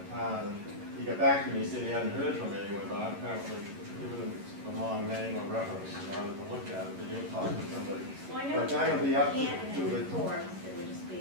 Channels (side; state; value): left; late; 11 ms